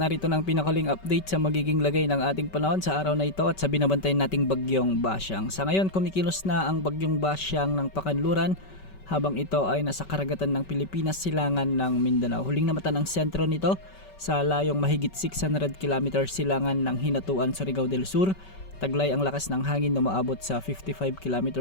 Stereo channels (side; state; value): right; late; 5.2 ms